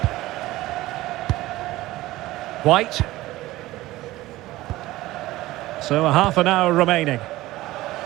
White. So a half an hour remaining.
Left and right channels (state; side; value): quieter; left; 17.4 dB